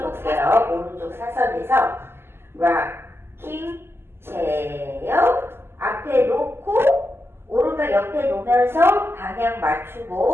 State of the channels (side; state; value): left; late; 0.12 ms